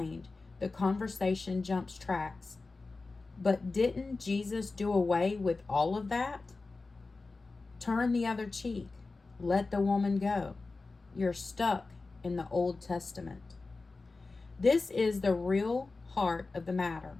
the conversation jumps tracks. But didn't Jesus do away with all of that? Turn the other cheek. Let the woman go. You're stuck in the Old Testament. This is the real heart of the matter,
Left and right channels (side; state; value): right; quieter; 3.7 dB